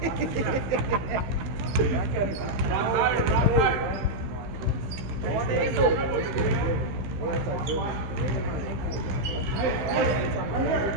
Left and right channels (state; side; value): late; left; 15 ms